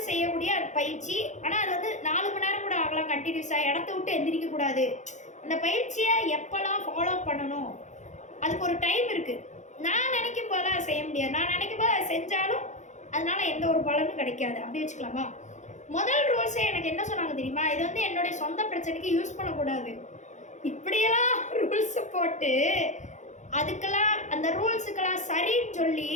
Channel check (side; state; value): right; late; 0.35 ms